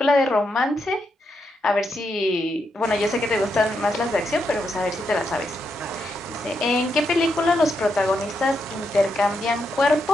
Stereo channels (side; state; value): both; normal; correlation 0.82